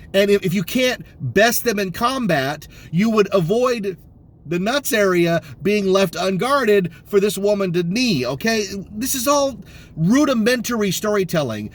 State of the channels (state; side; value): identical; both; correlation 1.00